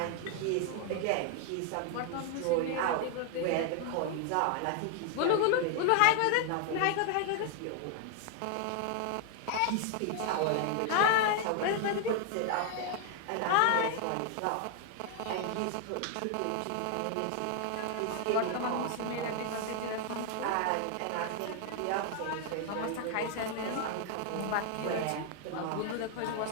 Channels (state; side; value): different; both; correlation 0.00